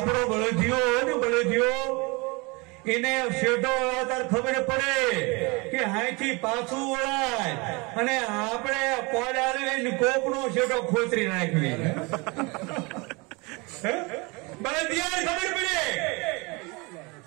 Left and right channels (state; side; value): quieter; left; 27.4 dB